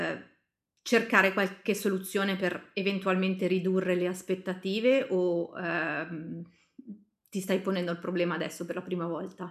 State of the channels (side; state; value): both; identical; correlation 1.00